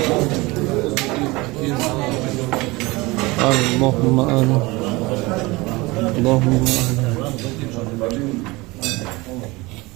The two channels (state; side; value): quieter; left; 22.8 dB